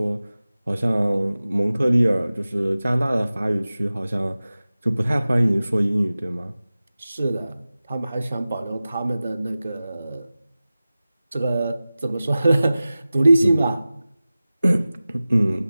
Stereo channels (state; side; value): inverted; both; correlation -0.97